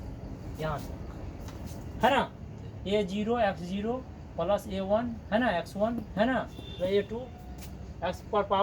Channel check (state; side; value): identical; both; correlation 1.00